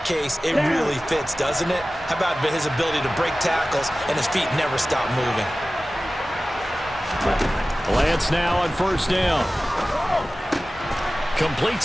case, it really fits, doesn't it? How about his ability to break tackles and his feet never stop moving? Lance now on 1st down.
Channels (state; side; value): normal; both; correlation 0.96